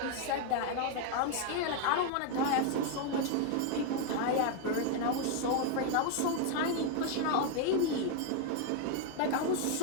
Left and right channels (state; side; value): different; both; correlation 0.01